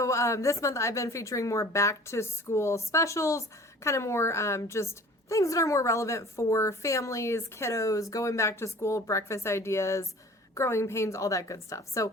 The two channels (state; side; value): normal; both; correlation 0.46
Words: this month, I've been featuring more back to school specials, kind of more just things that are more relevant for families, kiddos, going back to school, breakfast ideas, growing pains, all that good stuff. So